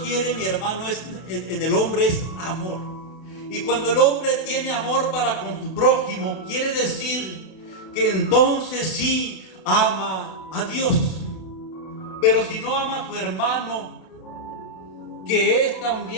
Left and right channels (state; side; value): late; right; 32 ms